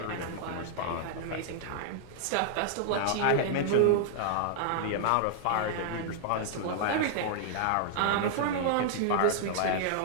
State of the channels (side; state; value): both; different; correlation -0.01